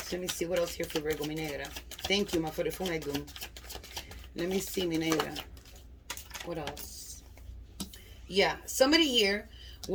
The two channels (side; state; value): both; identical; correlation 1.00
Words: Let me see what else here for Virgo, mi negra. Thank you, ma forefumegum. Let me see, mi negra. What else? Yeah, somebody here